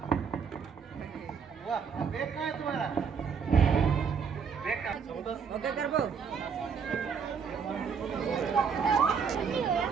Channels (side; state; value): left; quieter; 6.3 dB